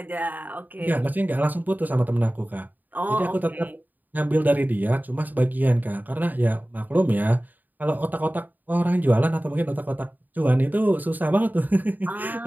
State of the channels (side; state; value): left; late; 0.086 ms